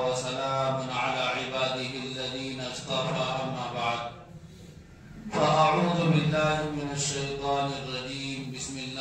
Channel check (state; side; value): identical; both; correlation 1.00